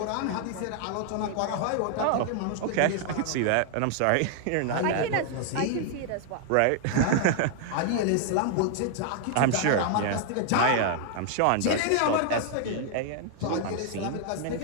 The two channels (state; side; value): different; both; correlation 0.00